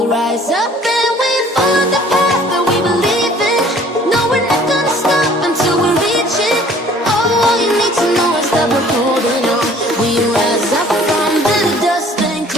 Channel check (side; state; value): both; normal; correlation 0.53